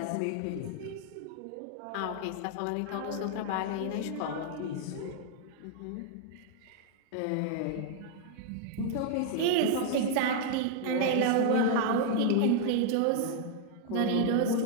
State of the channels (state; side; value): different; both; correlation 0.00